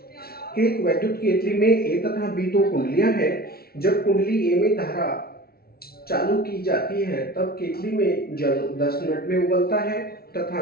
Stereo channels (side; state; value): right; late; 0.44 ms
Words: कि एक वैद्युत केतली में ए तथा बी दो कुंडलियां हैं। जब कुंडली ए में धारा चालू की जाती है तब केतली में जल 10 मिनट में उबलता है